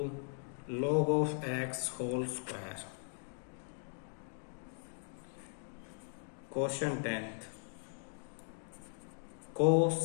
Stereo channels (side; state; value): right; silent; 52 dB below the other